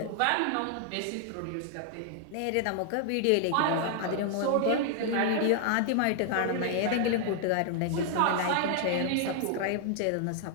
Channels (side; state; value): both; different; correlation 0.00